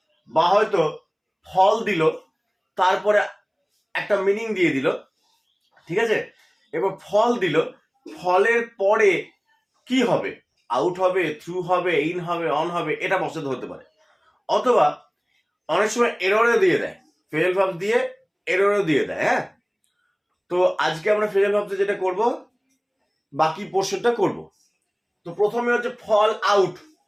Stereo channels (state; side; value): identical; both; correlation 1.00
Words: বা হয়তো ফল দিল তারপরে একটা মিনিং দিয়ে দিল, ঠিক আছে। এবার ফল দিল, ফলের পরে কি হবে, আউট হবে, থ্রু হবে, ইন হবে, অন হবে, এটা বসাতে হতে পারে। অথবা অনেক সময় এররও দিয়ে দেয়, ফেল ভাব দিয়ে এররও দিয়ে দেয়। হ্যাঁ, তো আজকে আমরা ফেল ভাবতে যেটা করব, বাকি পোর্শনটা করব। তো প্রথমে হচ্ছে ফল আউট।